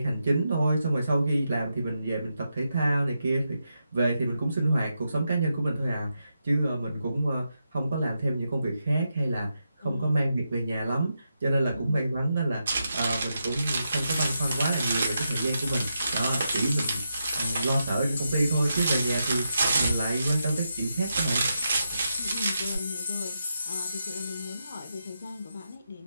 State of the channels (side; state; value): both; inverted; correlation -0.86